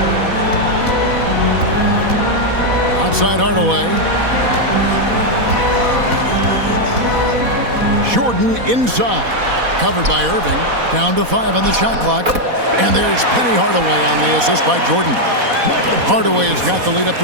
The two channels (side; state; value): left; late; 4.1 ms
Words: Outside Hardaway. Jordan inside. Covered by Irving. Down to 5 on the shot clock. And there's Penny Hardaway on the assist by Jordan. Hardaway has got the lead up